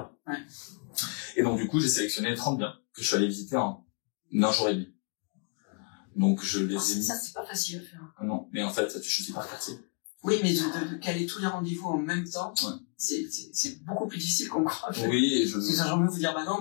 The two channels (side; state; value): right; quieter; 36.5 dB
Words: Ouais. Et donc du coup, j'ai sélectionné 30 biens que je suis allé visiter en un jour et demi. Donc je les ai mis. Ça, c'est pas facile à faire. Non, mais en fait, tu choisis par quartier. Oui, mais de caler tous les rendez-vous en même temps, c'est beaucoup plus difficile qu'on croit. Oui, j'ai envie de vous dire, bah non,